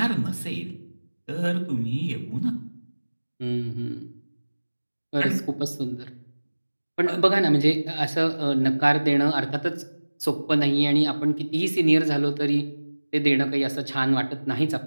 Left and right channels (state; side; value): inverted; both; correlation -1.00